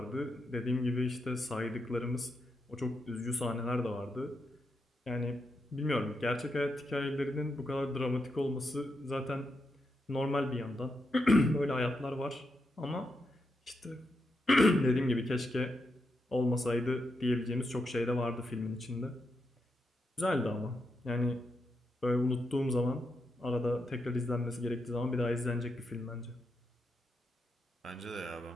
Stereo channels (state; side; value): normal; both; correlation 0.84